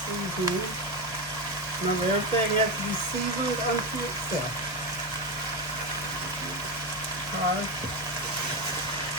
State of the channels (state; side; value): normal; both; correlation 0.13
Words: Remember, everything has to be seasoned unto itself. Alright.